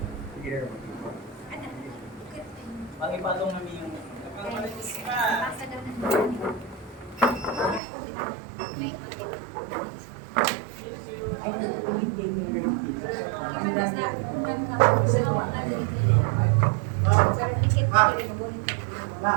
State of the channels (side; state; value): left; drops out; at 7.8 s